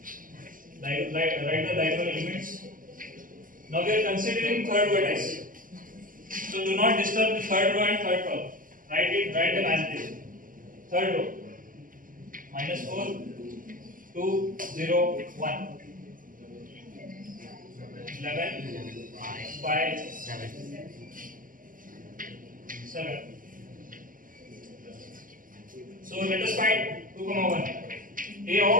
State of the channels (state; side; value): late; left; 0.40 ms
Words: Write the diagonal elements. Now we are considering third vertex. So do not disturb the third row and third column. Write them as it is. Third row. -4, 2, 0, 1. 11, 5, 7. So let us find 2 comma 1. A